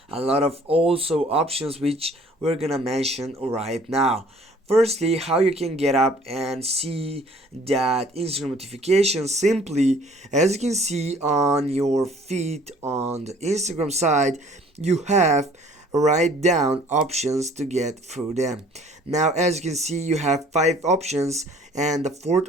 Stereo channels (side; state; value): both; normal; correlation 0.55